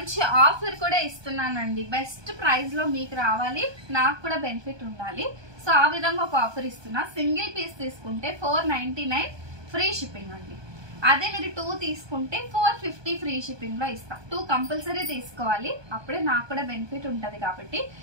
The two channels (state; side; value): late; left; 1.2 ms